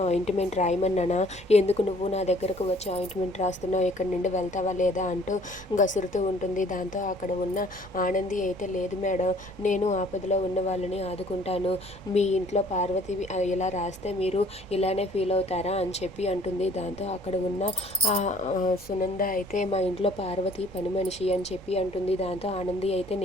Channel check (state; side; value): noise; right; rumble, 19 dB below the sound